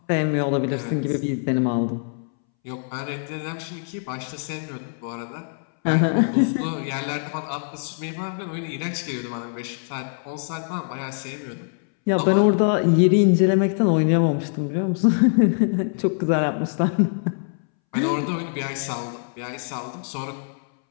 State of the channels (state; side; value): silent; right; 63 dB below the other